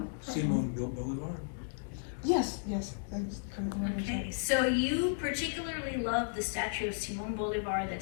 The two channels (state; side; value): silent; right; digital silence